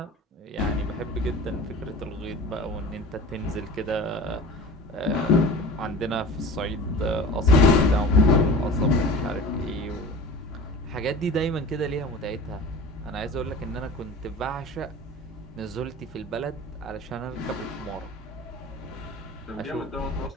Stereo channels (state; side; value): normal; both; correlation 0.37